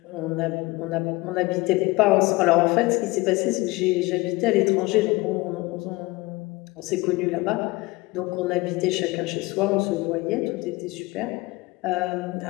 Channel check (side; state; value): right; quieter; 22.3 dB